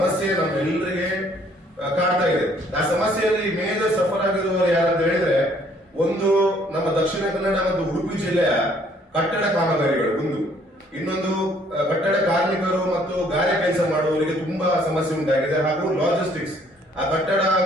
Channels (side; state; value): both; normal; correlation 0.62